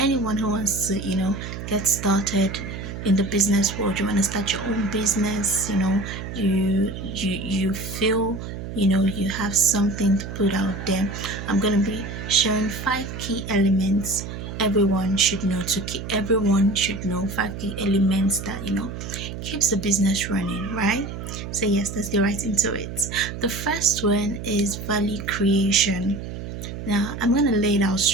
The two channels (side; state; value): right; noise; hum, 8 dB below the sound